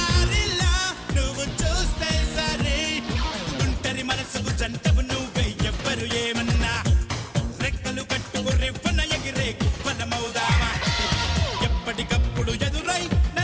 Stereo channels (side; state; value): both; identical; correlation 1.00